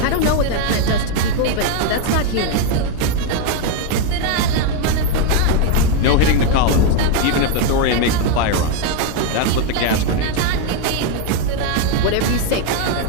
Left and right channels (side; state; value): both; different; correlation 0.01